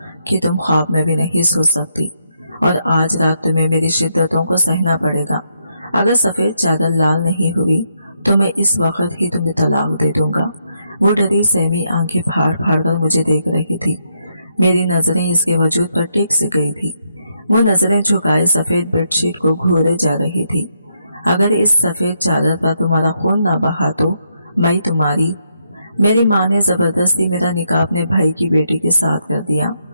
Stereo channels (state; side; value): inverted; both; correlation -0.78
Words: कि तुम ख्वाब में भी नहीं सो सकती, और आज रात तुम्हें मेरी शिद्दतों को सहना पड़ेगा। अगर सफ़ेद चादर लाल नहीं हुई तो मैं इस वक्त ही तुम्हें तलाक दे दूंगा। वो डरी सहमी आंखें फाड़ फाड़ कर मुझे देख रही थी। मेरी नजरें इसके वजूद पर टिक सी गई थी। वो नजरें झुकाए सफ़ेद बेडशीट को घूरे जा रही थी। अगर इस सफ़ेद चादर पर तुम्हारा खून ना बहा तो मैं तुम्हारी। मेरी माँ ने ज़बरदस्ती मेरा निकाह अपने भाई की बेटी के साथ कर दिया।